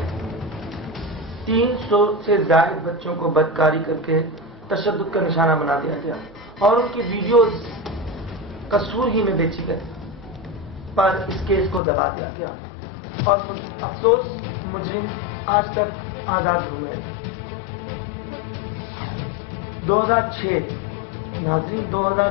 300 سے زائد بچوں کو بدکاری کر کے تشدد کا نشانہ بنا دیا گیا، اور ان کی ویڈیوز قصور ہی میں بیچی گئی، پر اس کیس کو دبا دیا گیا، اور افسوس مجرم آج تک آزاد ہوئے۔ 2006 ناظرین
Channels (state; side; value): drops out; right; at 11.8 s